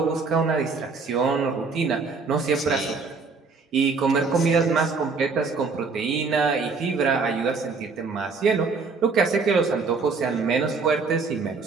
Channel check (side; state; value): left; quieter; 4.5 dB